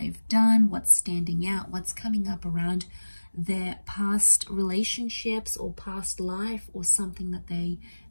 done, what's standing out, what's coming up around their past relationships or past life, or something that they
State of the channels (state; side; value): inverted; both; correlation -1.00